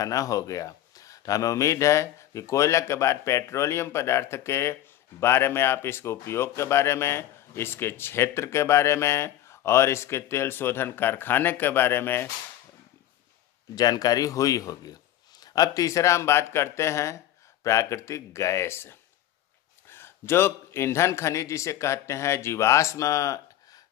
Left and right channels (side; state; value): right; quieter; 12.7 dB